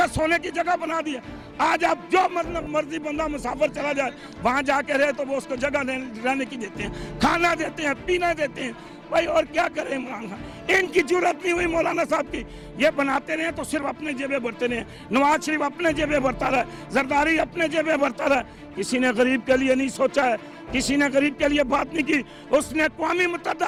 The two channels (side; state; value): both; identical; correlation 1.00